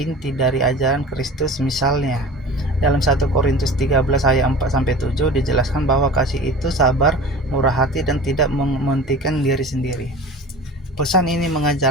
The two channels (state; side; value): normal; both; correlation 0.37